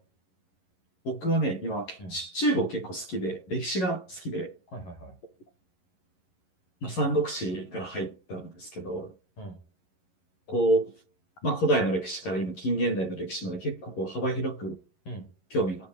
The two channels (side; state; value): right; late; 11 ms